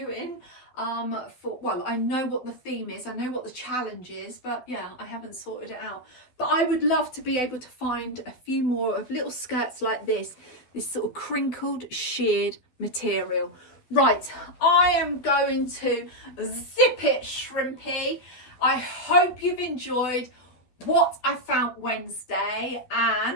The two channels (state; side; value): late; right; 12 ms